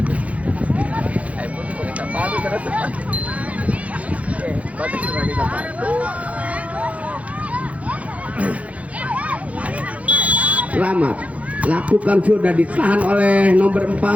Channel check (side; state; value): left; late; 0.066 ms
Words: Selamat lakukan sudah, ditahan oleh nomor